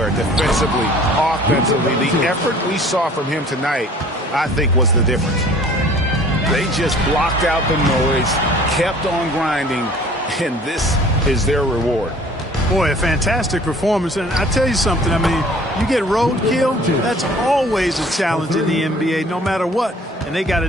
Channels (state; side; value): normal; both; correlation 0.51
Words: defensively, offensively. The effort we saw from him tonight, I think, was the difference. They just blocked out the noise, kept on grinding, and this is their reward. Boy, a fantastic performance. And I tell you something, I mean, you get roadkill, that's always a challenge in the NBA, no matter what, and they got